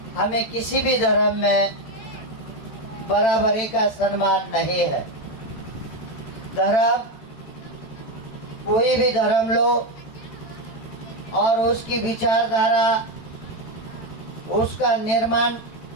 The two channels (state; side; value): late; right; 13 ms